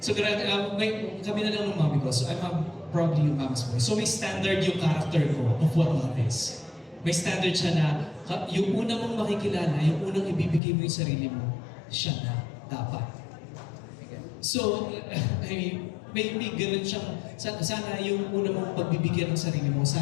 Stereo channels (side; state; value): right; drops out; at 10.6 s